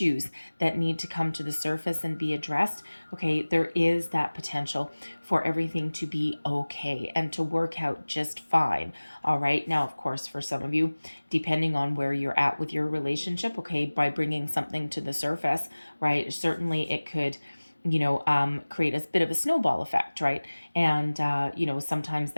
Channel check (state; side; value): inverted; both; correlation -1.00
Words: that need to come to the surface and be addressed, okay, there is that potential for everything to be okay and to work out just fine. All right. Now, of course, for some of you, depending on where you're at with your relationship, okay, by bringing something to the surface, right, certainly it could create a bit of a snowball effect, right? And, sometimes